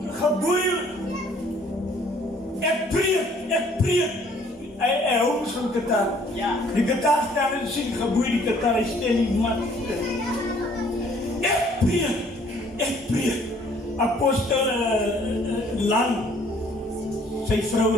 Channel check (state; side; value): normal; both; correlation 0.60